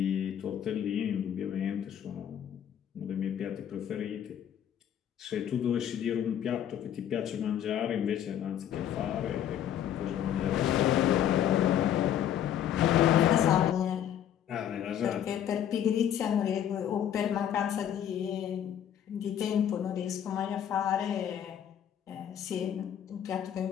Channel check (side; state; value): right; quieter; 10.0 dB